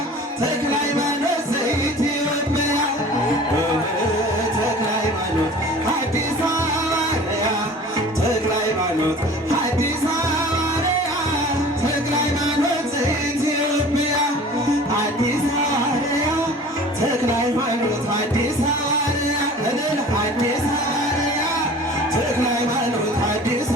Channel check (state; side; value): normal; both; correlation 0.43